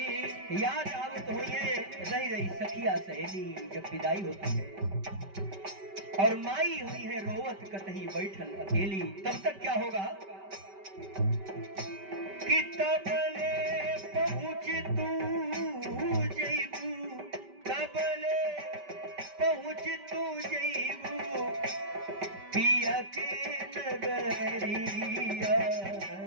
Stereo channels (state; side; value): late; left; 5.1 ms